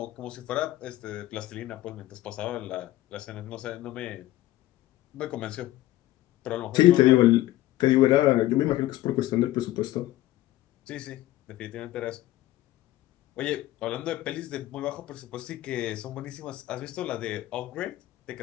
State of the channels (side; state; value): right; quieter; 15.7 dB